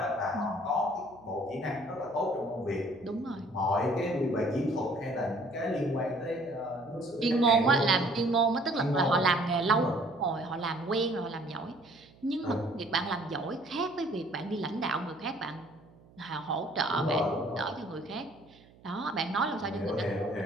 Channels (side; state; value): right; noise; hum, 26 dB below the sound